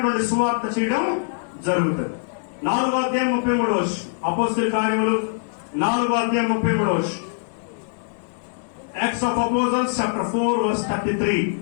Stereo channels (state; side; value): silent; right; digital silence